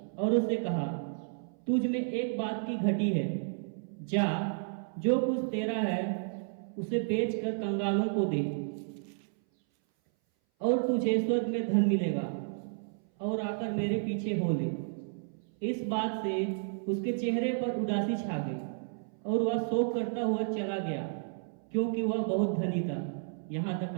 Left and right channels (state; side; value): silent; left; 57 dB below the other